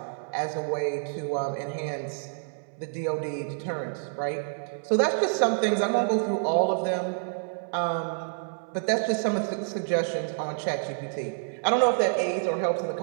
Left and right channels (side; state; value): left; silent; 59 dB below the other